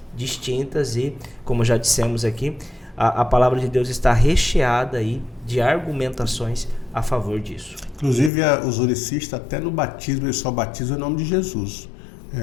distintas e, como já dissemos aqui, a palavra de Deus está recheada aí de argumentações a favor disso. Inclusive, os unicistas, até no batismo, eles só batizam em nome de Jesus.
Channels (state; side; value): drops out; right; at 8.3 s